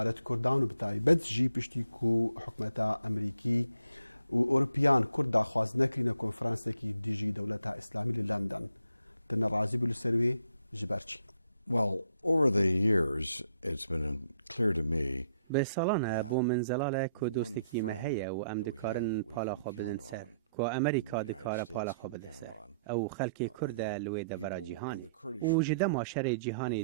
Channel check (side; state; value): both; inverted; correlation -0.72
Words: كردان وبتاي بد جي بشتيكو حكمتا امريكي واوروبيان كردا خواز نكرينا كونفرنس كي ديجي دولتها اسلامي لندن تن رازي بالسروي جبرتشي. Well, over the years it's been clear to me به سالانه بو من زلاله که دوستکی مهیه و ام دکارن پالا خو بدن سر که امریکا دکاره پالا خو بده سر او خلک کرد لوی دبرا جهانی و جده ماشر جهانی